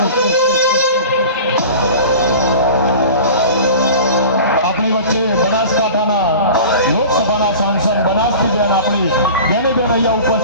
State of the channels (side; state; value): both; inverted; correlation -0.38